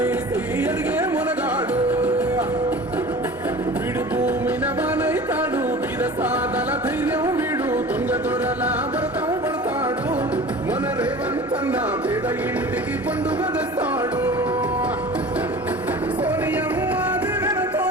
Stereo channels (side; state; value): both; normal; correlation 0.39